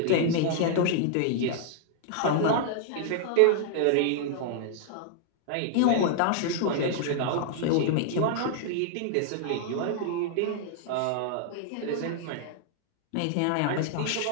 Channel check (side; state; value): both; different; correlation 0.00